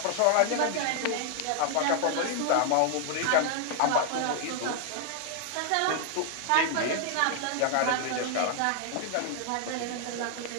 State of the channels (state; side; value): different; both; correlation 0.00